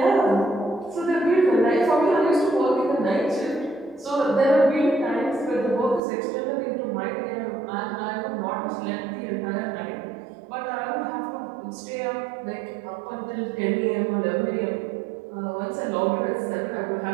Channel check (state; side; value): drops out; left; at 6.0 s